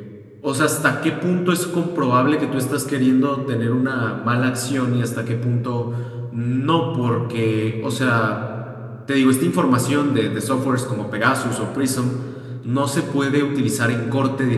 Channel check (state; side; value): identical; both; correlation 1.00